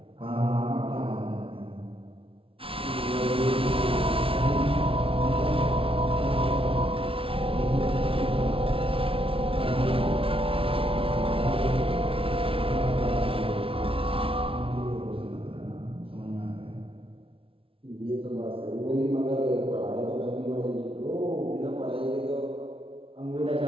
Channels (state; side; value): late; left; 0.26 ms